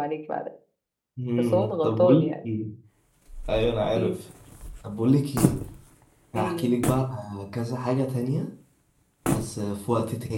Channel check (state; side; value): identical; both; correlation 1.00